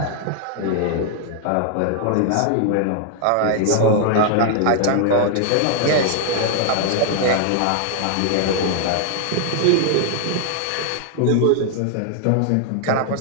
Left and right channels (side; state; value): both; different; correlation 0.00